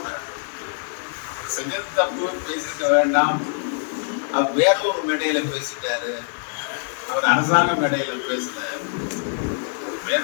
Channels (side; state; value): right; silent; digital silence